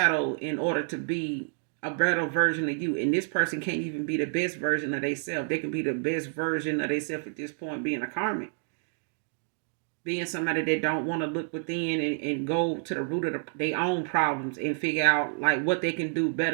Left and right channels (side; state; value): left; silent; 58 dB below the other